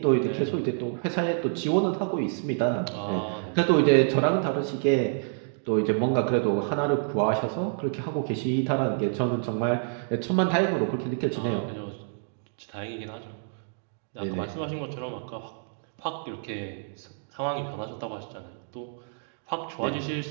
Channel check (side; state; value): left; silent; digital silence